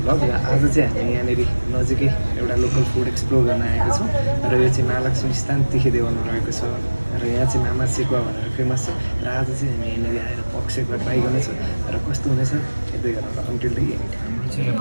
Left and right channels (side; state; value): both; inverted; correlation -1.00